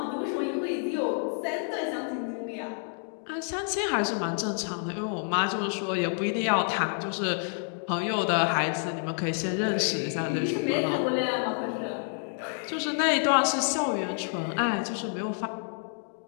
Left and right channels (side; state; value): right; silent; 59 dB below the other